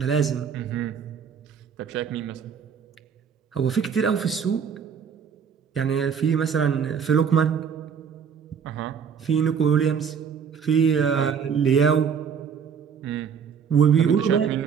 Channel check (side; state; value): left; quieter; 7.0 dB